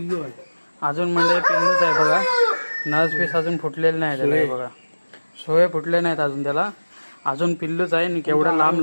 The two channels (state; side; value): inverted; both; correlation -1.00